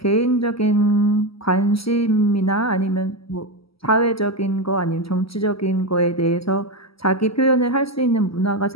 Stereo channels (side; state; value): right; late; 0.75 ms